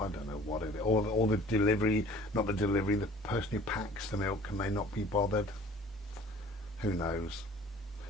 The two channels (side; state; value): both; normal; correlation 0.49